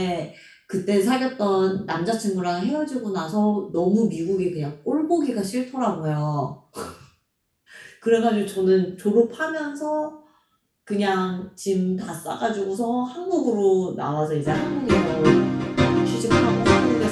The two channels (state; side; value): identical; both; correlation 1.00